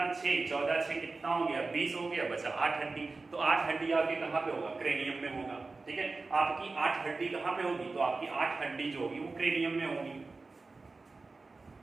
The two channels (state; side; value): quieter; left; 3.8 dB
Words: 6, 14 6 कितना हो गया, 20 हो गया, बचा 8 हड्डी। तो 8 हड्डी आपके कहाँ पे होगा, क्रेनियम में होगा। ठीक है, आपकी 8 हड्डी कहाँ पे होगी, तो आपकी 8 हड्डी जो होगी वो क्रेनियम में होगी।